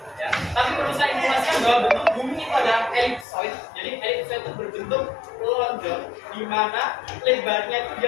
Ya. Tapi perlu saya informasikan bahwa bentuk bumi itu adalah elipsoid. Jadi elipsoid itu berbentuk lonjong, di mana lebarnya itu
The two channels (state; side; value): drops out; right; at 3.2 s